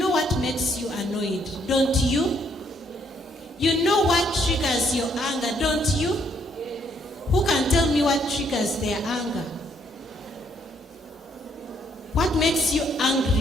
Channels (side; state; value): both; normal; correlation 0.69